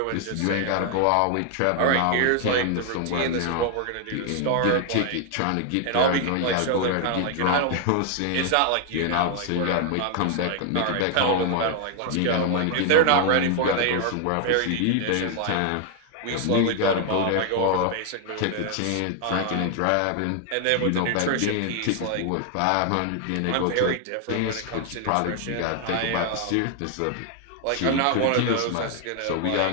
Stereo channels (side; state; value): both; different; correlation 0.00